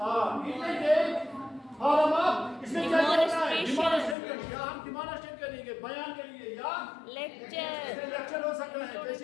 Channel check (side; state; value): right; drops out; at 4.2 s